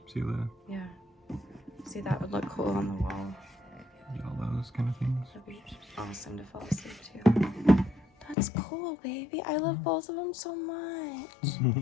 See the Yeah. See, that would look cool on the wall. you get all those kind of things. That'd be awesome to fall asleep to. That's cool, baby. I love both of them so much.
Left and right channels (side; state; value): right; drops out; at 8.3 s